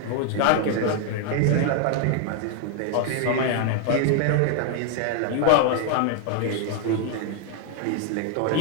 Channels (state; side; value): different; both; correlation 0.00